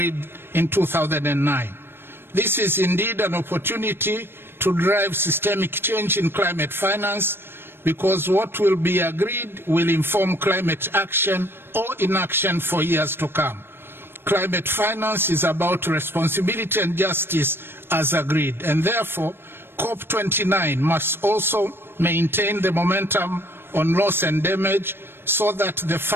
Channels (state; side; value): late; left; 0.11 ms